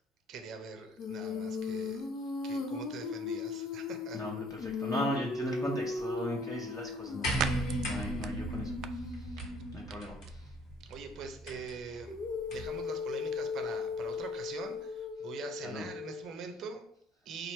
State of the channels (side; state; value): both; normal; correlation 0.58